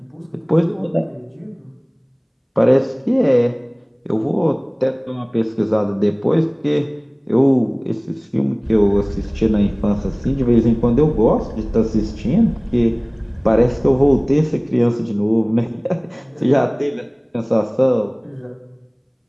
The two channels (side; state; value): both; identical; correlation 1.00